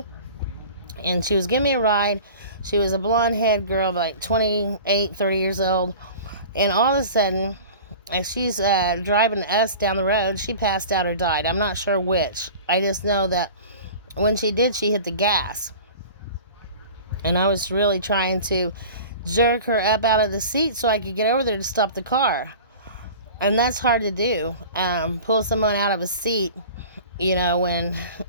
And she was giving me a ride. She was a blonde-haired girl, like 28, 30 years old. And all of a sudden, as she's driving us down the road, she passed out or died. I'm not sure which. I just know that when she did, she hit the gas. And I was really trying to jerk her up out of the seat so I could get over there to stop the car. And that's hard to do. Pull someone out of a seat, when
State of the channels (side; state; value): both; inverted; correlation -0.39